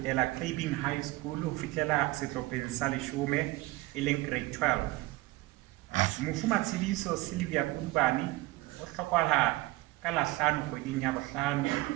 Craving High School ho fihlela sehlopheng sa 10 e leng grade 12. Mofu Matshidiso Sylvia Kudubane o hlokahala ka la 5 kgweding ya bohlano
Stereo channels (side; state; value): left; quieter; 20.3 dB